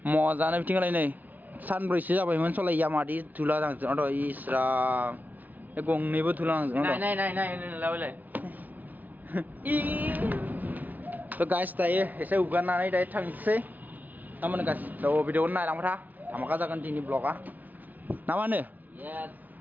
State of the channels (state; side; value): late; left; 0.079 ms